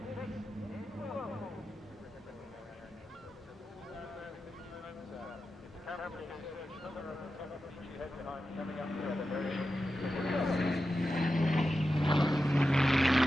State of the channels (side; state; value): both; normal; correlation 0.91